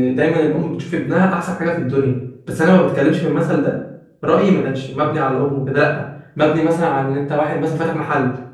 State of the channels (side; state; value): both; identical; correlation 1.00